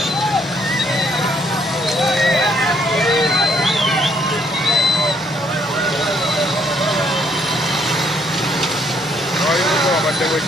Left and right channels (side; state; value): both; normal; correlation 0.68